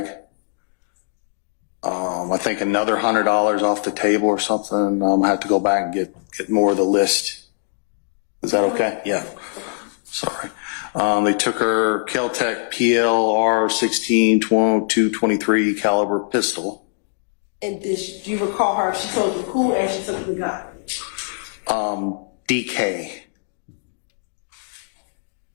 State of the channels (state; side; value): silent; right; digital silence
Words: I think another $100 off the table or something. I have to go back and get more of the list. Is that okay? Yeah. Sorry. They took her Kel-Tec PLR 16 223 caliber pistol. And do you recall her? She told you who and she took the gun. DK.